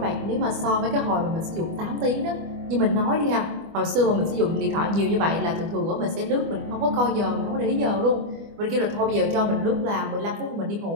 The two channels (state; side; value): late; left; 25 ms